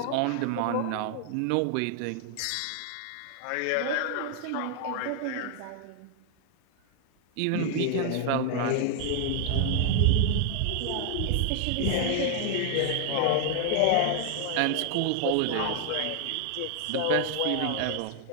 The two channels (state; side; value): different; both; correlation 0.00